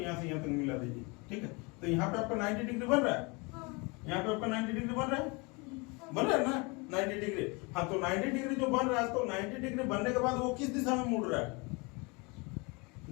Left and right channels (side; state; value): right; quieter; 28.6 dB